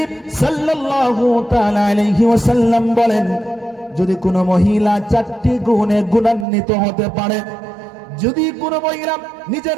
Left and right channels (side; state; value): left; drops out; at 6.5 s